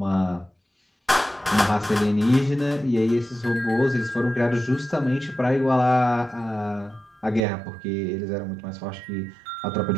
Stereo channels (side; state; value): left; drops out; at 7.4 s